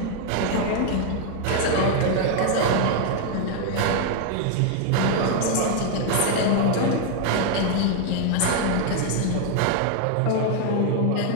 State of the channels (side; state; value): both; different; correlation 0.00